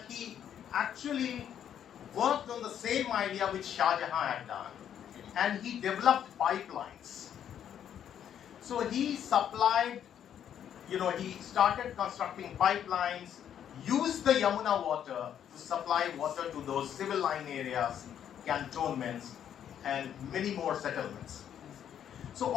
he actually worked on the same idea which Shah Jahan had done, and he developed pipelines. So he supplied, he started constructing pipelines, used the Yamuna water to supply water to those civil line areas, cantonments, and many more settlements. So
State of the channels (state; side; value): quieter; right; 9.5 dB